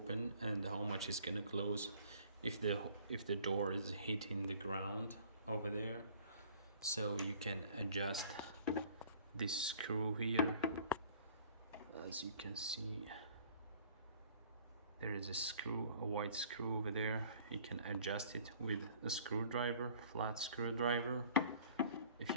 and how much is gonna close, if the door is hitting the ground over there, so you can adjust this screw here. As you can see, there is a screw, a white screw over there. You can adjust it with a screwdriver, flat screwdriver. If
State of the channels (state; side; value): inverted; both; correlation -0.53